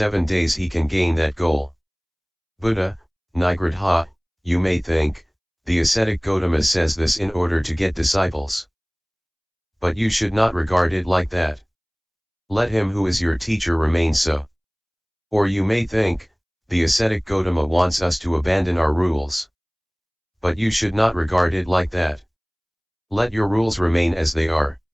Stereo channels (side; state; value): both; identical; correlation 1.00